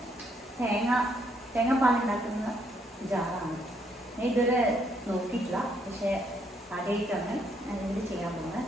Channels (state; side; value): normal; both; correlation 0.72